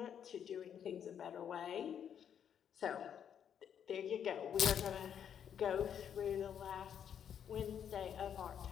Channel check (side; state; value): right; quieter; 8.6 dB